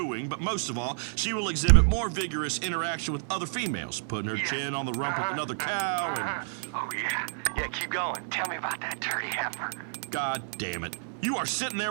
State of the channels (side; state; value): left; silent; 58 dB below the other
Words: but most of all, she will exhibit more vigorous interaction with other females, putting her chin on the rump of another cow and... Oh, yeah, keep going. Tell me about that dirty heifer. God damn it. You are sitting